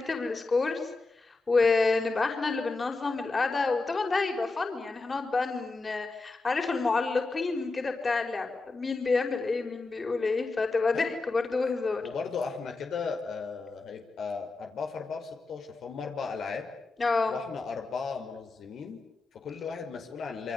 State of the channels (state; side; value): quieter; right; 3.7 dB